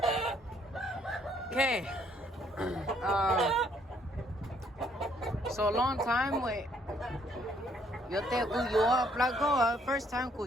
Okay. So long time we. Yo te kuyo blago. First time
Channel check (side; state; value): both; normal; correlation 0.67